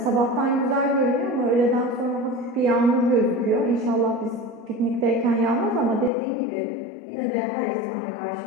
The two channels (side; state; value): right; drops out; at 6.1 s